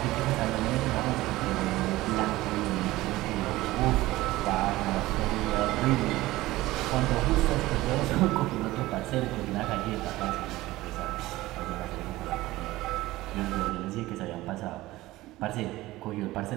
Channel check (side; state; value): left; quieter; 17.9 dB